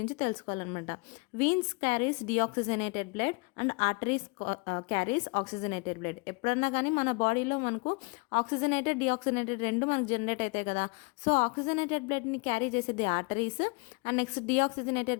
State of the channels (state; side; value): quieter; right; 30.6 dB